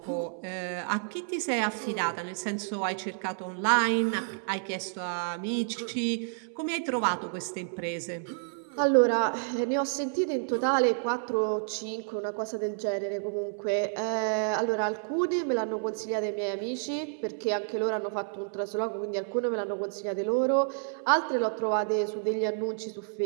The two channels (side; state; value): left; silent; 58 dB below the other